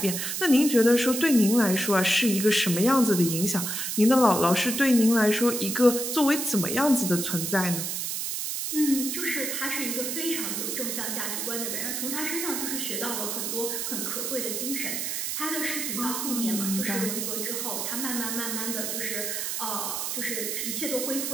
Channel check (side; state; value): right; noise; hiss, 2 dB below the sound